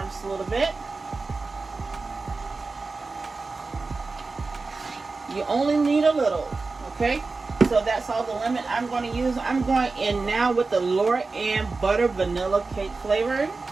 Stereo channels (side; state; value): left; quieter; 3.9 dB